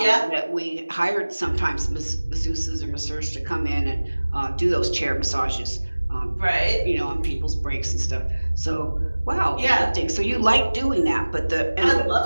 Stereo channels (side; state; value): both; inverted; correlation -1.00